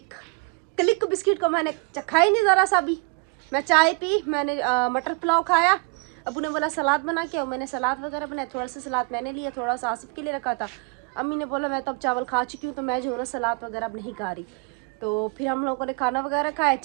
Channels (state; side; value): quieter; left; 32.0 dB